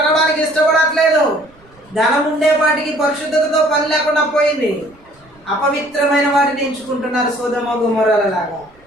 ఇష్టపడట్లేదు. ధనం ఉండేపాటికి పరిశుద్ధతతో పని లేకుండా పోయింది. అపవిత్రమైన వాటిని ఎంచుకుంటున్నారు సొదొమ గొమొర్రాల లాగా.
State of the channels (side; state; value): right; noise; rumble, 30 dB below the sound